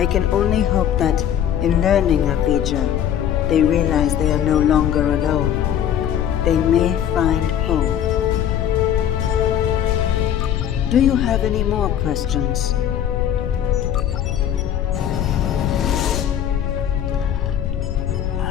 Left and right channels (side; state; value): right; quieter; 10.0 dB